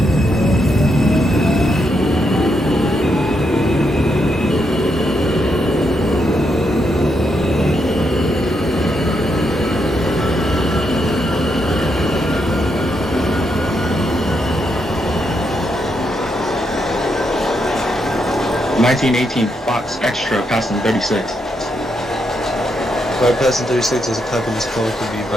1918 Fox Extra passing 36. Bypassing 36 as a copy in this call could be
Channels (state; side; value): normal; both; correlation 0.80